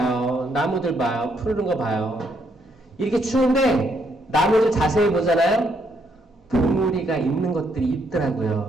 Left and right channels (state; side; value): normal; both; correlation 0.73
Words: 나무들 봐요. 푸르른 거 봐요. 이렇게 추운데 나무들 자세히 보잖아요. 봉우리가 있는 것들이